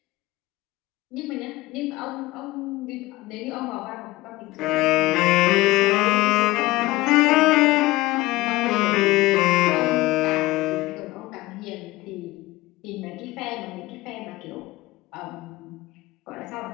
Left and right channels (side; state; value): right; quieter; 19.2 dB